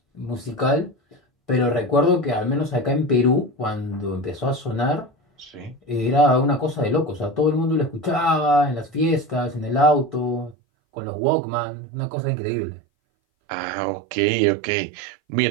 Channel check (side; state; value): left; drops out; at 10.6 s